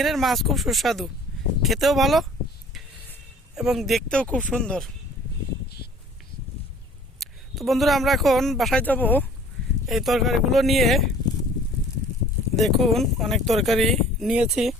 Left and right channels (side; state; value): both; normal; correlation 0.51